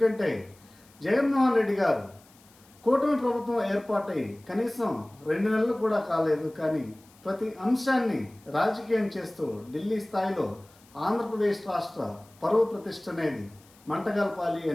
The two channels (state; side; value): noise; left; hiss, 28 dB below the sound